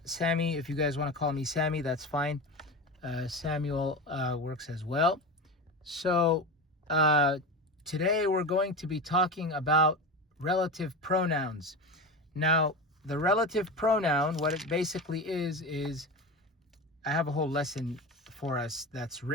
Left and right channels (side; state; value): both; normal; correlation 0.25